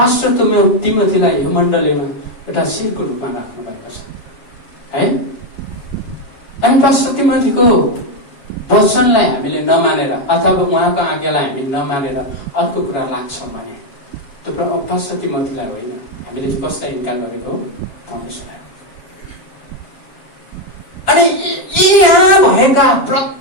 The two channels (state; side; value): late; right; 7.5 ms